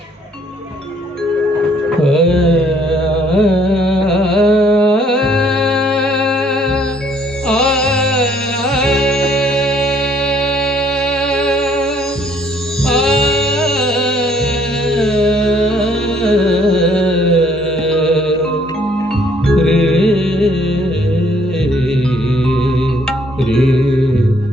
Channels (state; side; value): normal; both; correlation 0.64